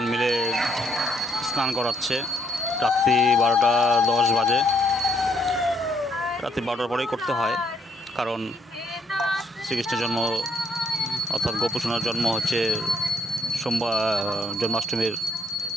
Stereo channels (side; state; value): both; normal; correlation 0.70